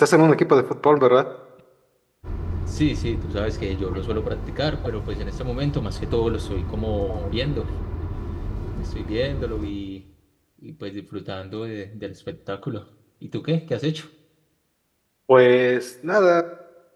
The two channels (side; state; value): both; identical; correlation 1.00